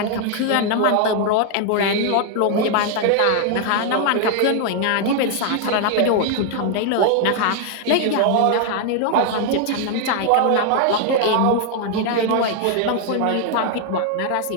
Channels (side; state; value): both; different; correlation 0.00